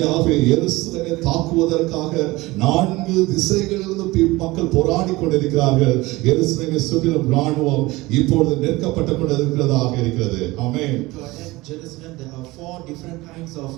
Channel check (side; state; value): left; quieter; 20.6 dB